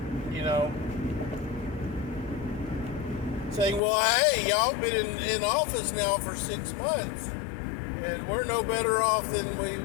you know, saying, well, hey, y'all been in office now for 6 months, and we're no better off than we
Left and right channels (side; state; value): right; drops out; at 3.8 s